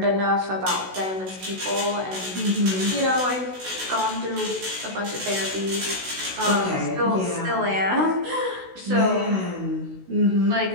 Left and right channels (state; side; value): late; left; 16 ms